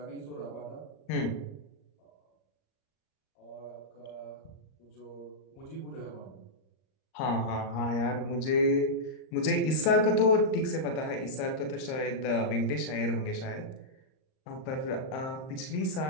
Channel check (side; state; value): right; late; 38 ms